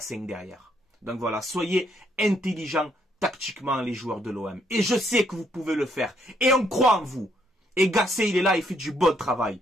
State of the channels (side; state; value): both; normal; correlation 0.71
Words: 5 derrière. Donc voilà, soyez intelligents tactiquement les joueurs de l'OM. Et je sais que vous pouvez le faire. Et on croit en vous. Et Gassé, il est là, il fait du bon travail.